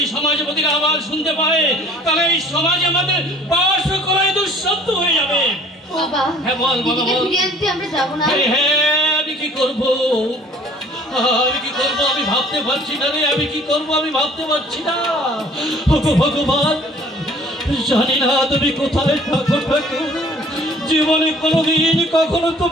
সমাজপতিরা আবার শুনতে পায় তাহলে এই সমাজ আমাদের বাস করাই দুঃশব্দ হয়ে যাবে। বাবা, হ্যাঁ বল বাবা বল। আমরা যাবো না। হ্যাঁ, আমি কি করবো আমি ভাবতে পারছি না রে, আমি কি করবো আমি ভাবতে পারছি না। ভগবান, জানি না তুমি কোথায় থাকো ঠাকুর। জীবনে কোনোদিন কখনো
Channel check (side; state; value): both; normal; correlation 0.52